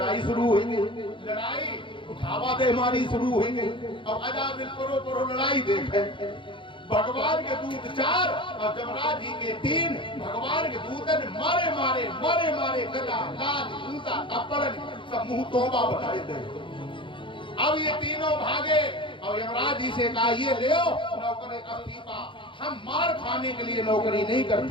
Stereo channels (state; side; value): late; right; 0.24 ms